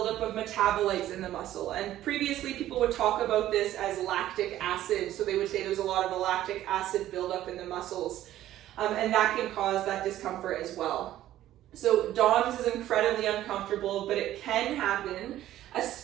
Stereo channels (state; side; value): quieter; left; 13.4 dB